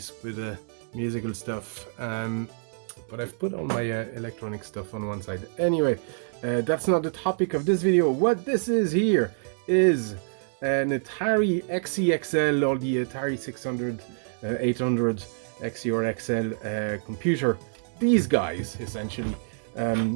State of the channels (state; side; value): silent; left; 60 dB below the other